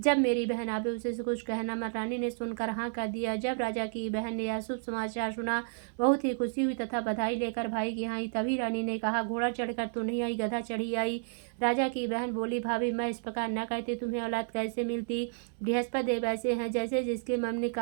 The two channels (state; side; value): silent; left; 57 dB below the other